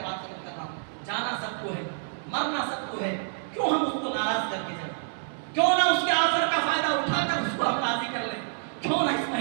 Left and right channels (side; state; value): left; silent; digital silence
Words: بات ختم کر رہا ہوں۔ جانا سب کو ہے، مرنا سب کو ہے، کیوں ہم اس کو ناراض کر کے جائیں؟ کیوں نہ اس کے آفر کا فائدہ اٹھا کر اس کو ہم راضی کر لیں؟ کیوں نہ اس